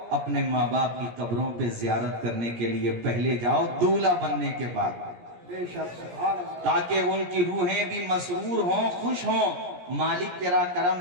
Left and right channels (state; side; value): late; left; 17 ms